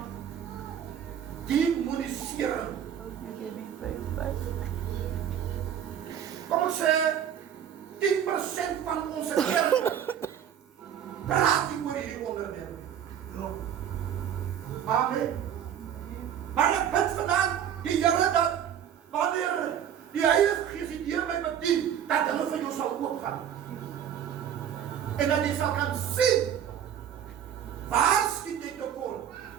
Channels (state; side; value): quieter; left; 9.4 dB